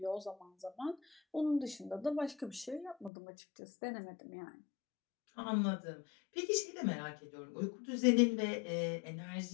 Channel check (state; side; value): drops out; right; at 3.1 s